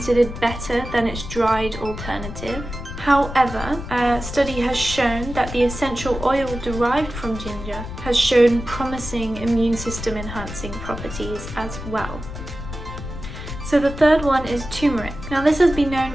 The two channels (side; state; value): left; noise; rumble, 9 dB below the sound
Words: better than its dried alternative. However, a study has shown that the essential oil derived from ginger has shown promising immune system enhancing properties as well. So the third one is turmeric. Now this has been known